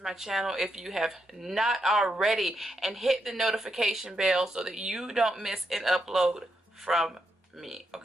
my channel if you have not already, and hit the notification bell so that you don't miss an upload from me,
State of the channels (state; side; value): normal; both; correlation 0.82